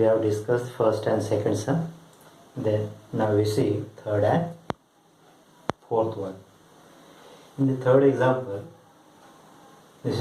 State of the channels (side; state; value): both; identical; correlation 1.00